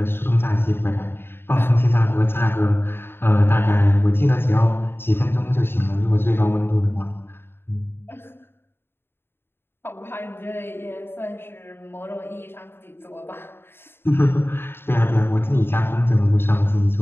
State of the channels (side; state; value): right; late; 0.11 ms